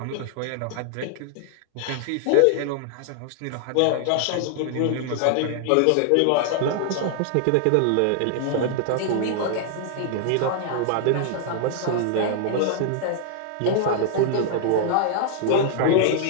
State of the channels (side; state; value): both; different; correlation 0.00